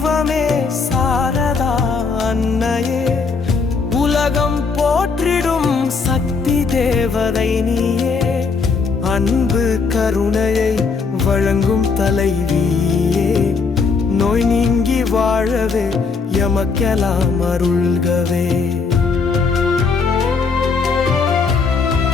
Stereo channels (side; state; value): right; quieter; 4.9 dB